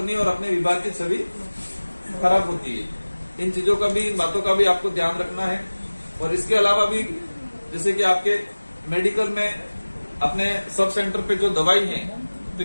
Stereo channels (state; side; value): inverted; both; correlation -1.00